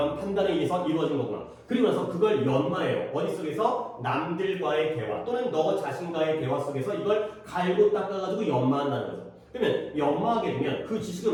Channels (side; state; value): both; identical; correlation 1.00